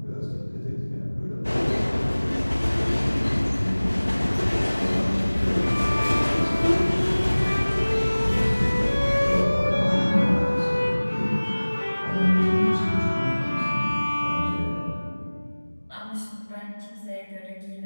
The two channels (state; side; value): inverted; both; correlation -1.00